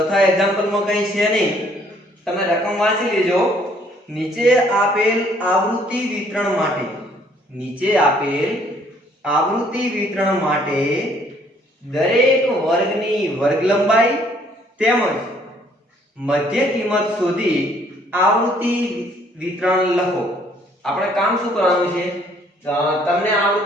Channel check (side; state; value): both; normal; correlation 0.63